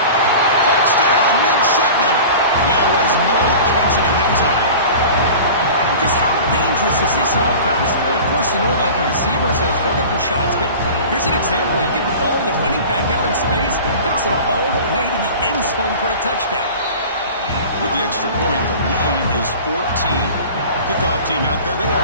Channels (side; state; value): both; inverted; correlation -0.38